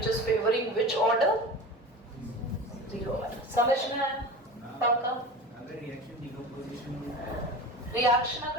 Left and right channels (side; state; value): both; normal; correlation 0.33